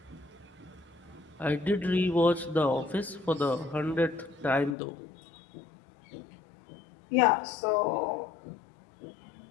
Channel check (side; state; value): right; drops out; at 4.8 s